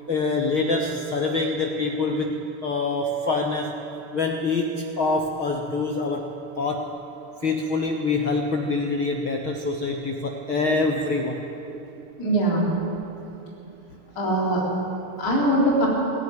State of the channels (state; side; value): late; left; 6.4 ms